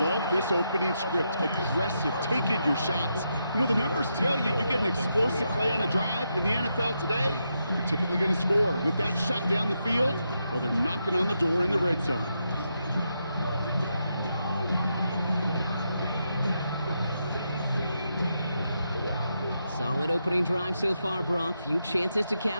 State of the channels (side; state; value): both; inverted; correlation -0.83